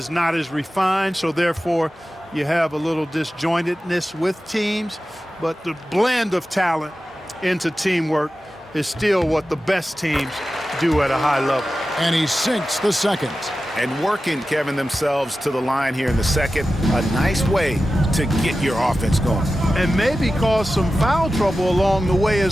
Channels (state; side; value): normal; both; correlation 0.94